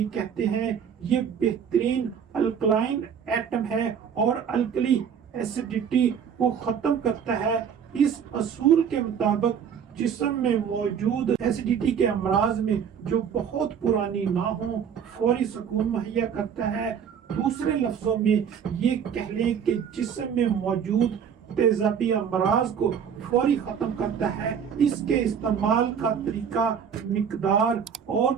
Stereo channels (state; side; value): quieter; left; 7.6 dB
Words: कहते हैं। ये बेहतरीन अल्कलाइन एटम है और अल्कली एसिडिटी को खत्म करता है। इस असूल के मुताबिक जिस्म में मौजूद एसिडिटी के अमराज में जो बहुत पुरानी ना हो, फौरी सुकून मुहैया करता है। दूसरे लफ्जों में ये कह लें कि जिस्म में मौजूद तेजाबी अमराज को फौरी खत्म करता है। इसके इस्तेमाल का तरीका, मिकदार और